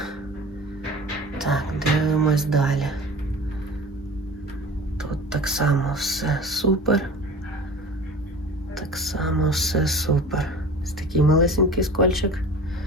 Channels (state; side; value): normal; both; correlation 0.39